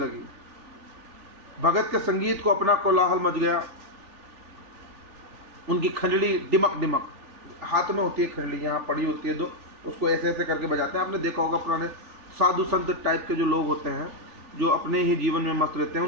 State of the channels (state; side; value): late; left; 3.4 ms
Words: भगत के संगीत को अपना कोलाहल मच गया। उनकी खंजड़ी डिमक डिमक, हाथ में होती है खंजड़ी, यहाँ पड़ी होती है दो, उसको ऐसे ऐसे करके बजाते हैं। आपने देखा होगा पुराने साधु संत टाइप के जो लोग होते हैं, जो अपने ही जीवन में मस्त रहते हैं,